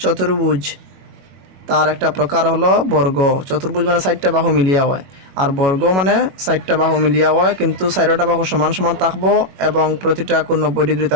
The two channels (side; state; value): left; late; 22 ms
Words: চতুর্ভুজ তার একটা প্রকার হলো বর্গ। চতুর্ভুজ মানে 4টা বাহু মিলিয়া হয়, আর বর্গ মানে 4টা বাহু মিলিয়া হয়, কিন্তু 4টা বাহু সমান সমান থাকবো এবং প্রতিটা কোণ 90 ডিগ্রি